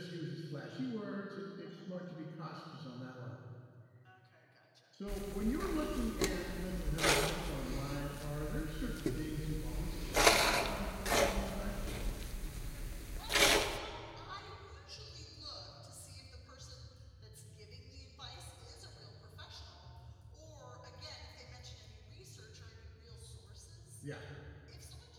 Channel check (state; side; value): identical; both; correlation 1.00